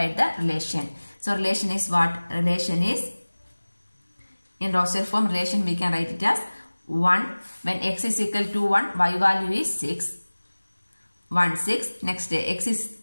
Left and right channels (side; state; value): both; inverted; correlation -1.00